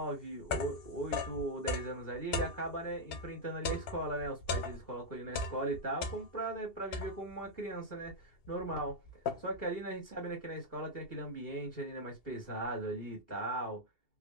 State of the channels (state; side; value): late; right; 2.7 ms